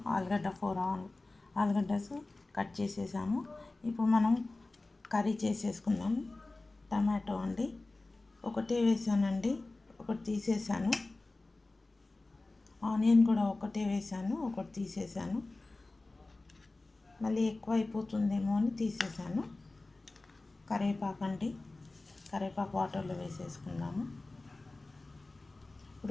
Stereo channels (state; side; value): quieter; right; 3.1 dB